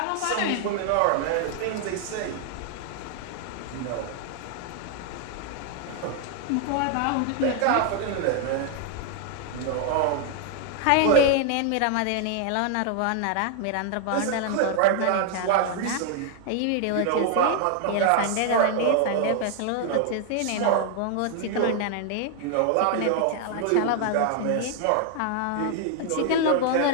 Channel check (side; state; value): both; different; correlation 0.00